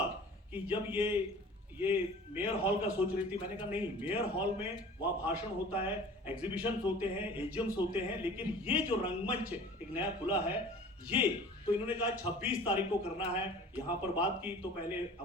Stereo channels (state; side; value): normal; both; correlation 0.44